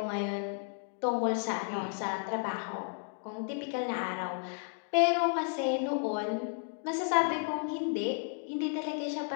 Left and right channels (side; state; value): right; silent; 56 dB below the other